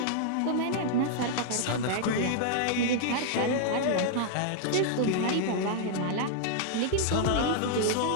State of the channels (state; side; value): different; both; correlation -0.01